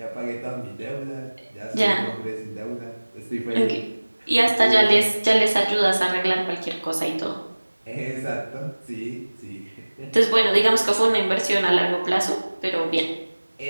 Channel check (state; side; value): inverted; both; correlation -1.00